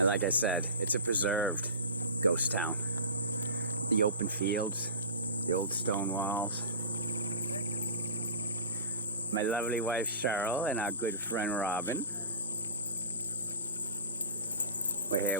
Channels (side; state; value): both; inverted; correlation -0.34